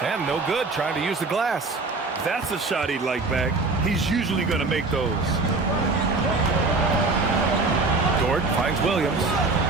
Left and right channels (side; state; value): left; quieter; 3.6 dB